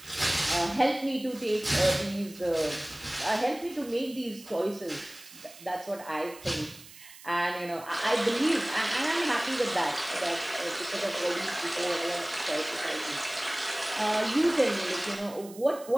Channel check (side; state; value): right; noise; hiss, 19 dB below the sound